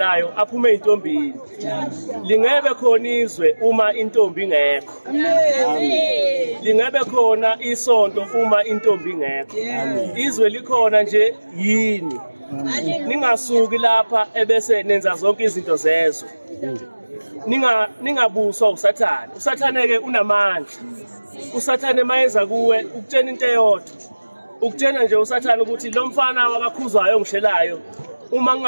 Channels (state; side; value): inverted; both; correlation -1.00